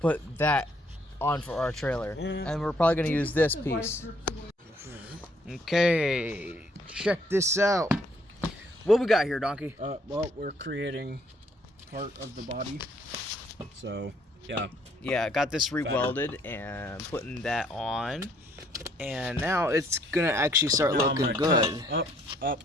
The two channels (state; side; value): normal; both; correlation 0.66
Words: that on for our trailer, and we're probably gonna use this piece. Okay, check this out. What we got here, Donkey? Well, we're creating part of the body, so yeah. Yeah, I got this re-welded and putting that on, and now it's gonna actually start looking good. Up,